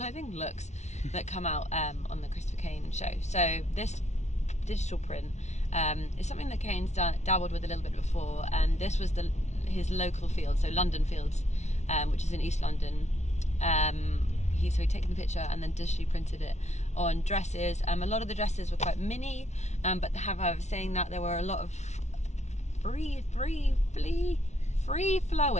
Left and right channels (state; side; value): late; right; 0.32 ms